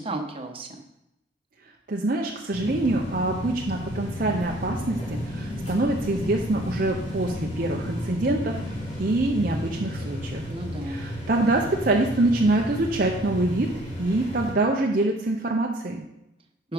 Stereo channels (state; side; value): normal; both; correlation 0.55